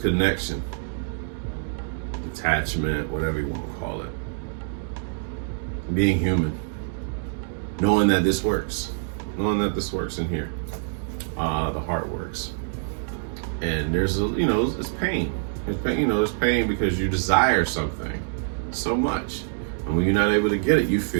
attachment, whatever you want to call it. Being human, knowing that this works in here. The heart works, and there's it's pain. There's pain because you desire something so much, and when you're not able to get it, you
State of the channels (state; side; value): silent; left; digital silence